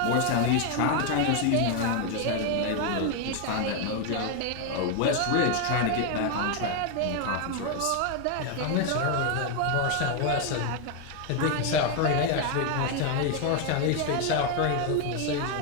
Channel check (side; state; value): both; different; correlation 0.01